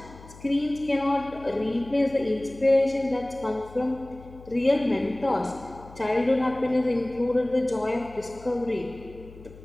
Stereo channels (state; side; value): noise; left; hum, 19 dB below the sound